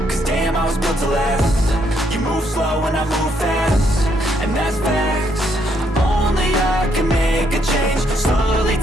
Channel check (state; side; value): normal; both; correlation 0.73